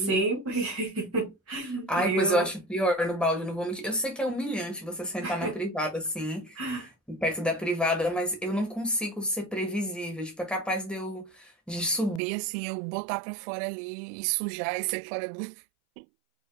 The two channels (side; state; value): left; drops out; at 12.2 s